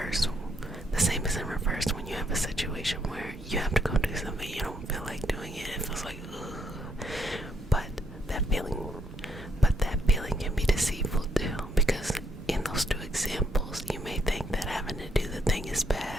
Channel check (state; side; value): normal; both; correlation 0.74